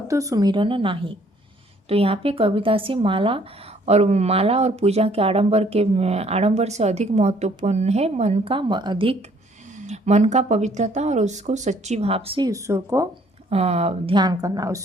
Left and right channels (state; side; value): normal; both; correlation 0.62